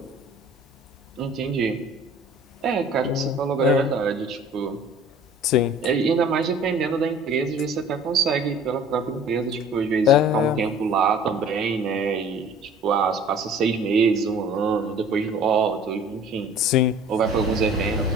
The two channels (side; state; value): both; normal; correlation 0.48